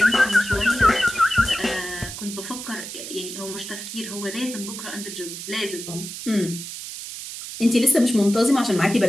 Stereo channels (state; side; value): noise; right; hiss, 9 dB below the sound